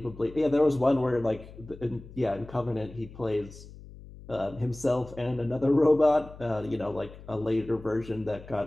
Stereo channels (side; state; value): left; noise; hum, 17 dB below the sound